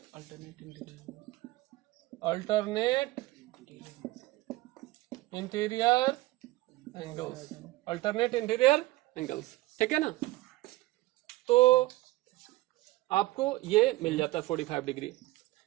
alternate interior angles, alternate interior angles. ठीक है ना, तो आपको ये मिल जाता है 45 डिग्री।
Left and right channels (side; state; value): left; quieter; 18.7 dB